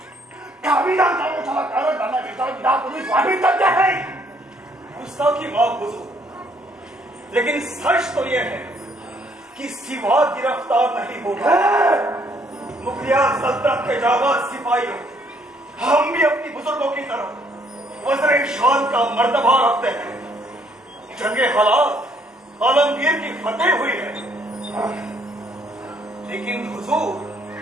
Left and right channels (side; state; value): both; normal; correlation 0.66